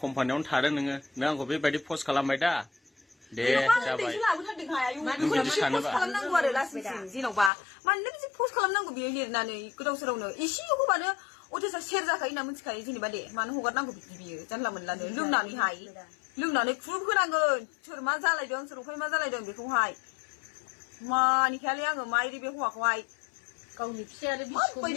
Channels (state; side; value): drops out; right; at 7.5 s